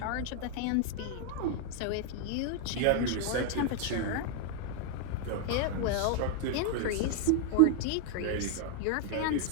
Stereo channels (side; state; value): both; different; correlation 0.00